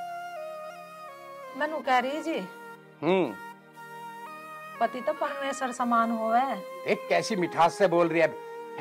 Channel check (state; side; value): identical; both; correlation 1.00